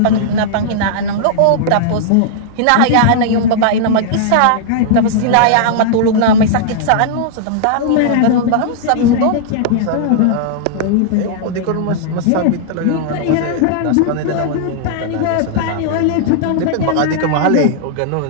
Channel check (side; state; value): both; different; correlation -0.01